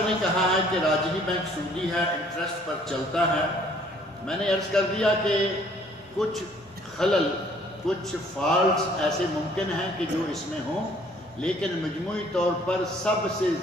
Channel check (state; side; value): normal; both; correlation 0.59